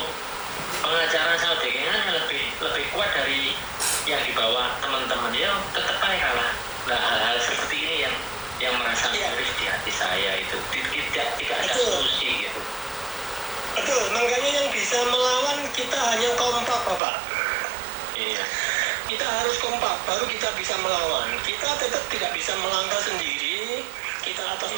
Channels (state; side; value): drops out; left; at 17.0 s